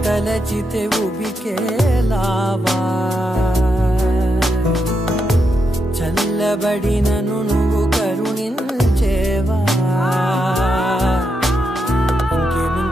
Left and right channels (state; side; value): normal; both; correlation 0.83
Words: తలచితే ఉబికేలావా చల్లబడినను నువ్వు కరుణించేవా